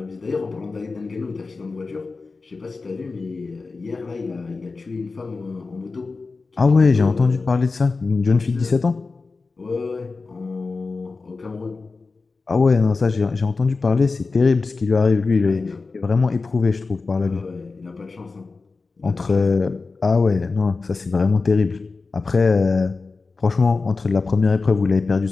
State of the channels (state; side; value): quieter; right; 4.0 dB